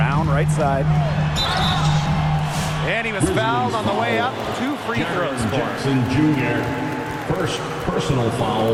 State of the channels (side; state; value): both; identical; correlation 1.00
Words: right side. And he was fouled on the way up. 2 free throws for him. Jackson Jr. First personal